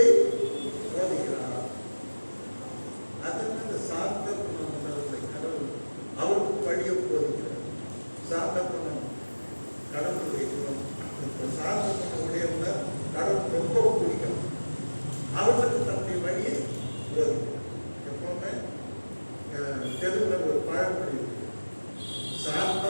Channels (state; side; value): inverted; both; correlation -1.00